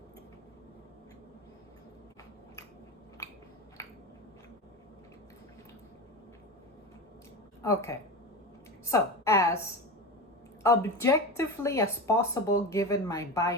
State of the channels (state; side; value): normal; both; correlation 0.24